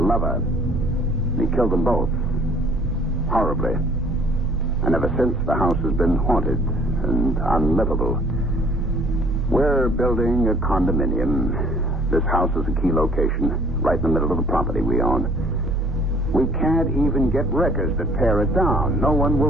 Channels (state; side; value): normal; both; correlation 0.56